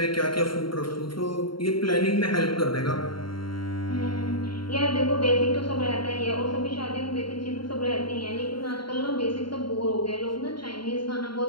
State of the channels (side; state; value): right; late; 0.73 ms